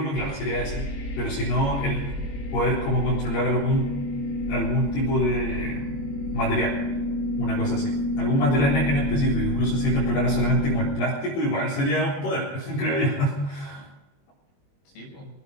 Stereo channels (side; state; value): right; late; 21 ms